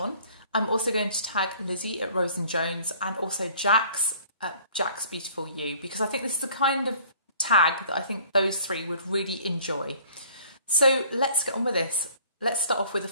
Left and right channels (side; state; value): both; inverted; correlation -0.53